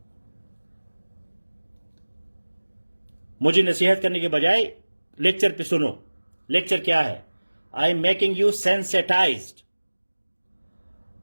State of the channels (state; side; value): inverted; both; correlation -1.00